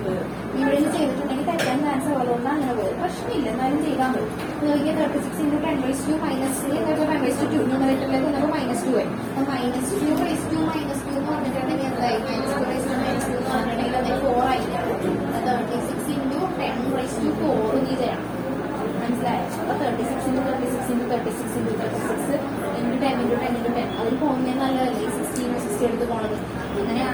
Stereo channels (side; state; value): both; identical; correlation 1.00